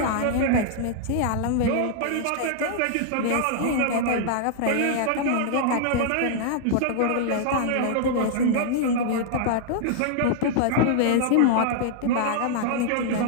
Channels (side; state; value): both; different; correlation -0.01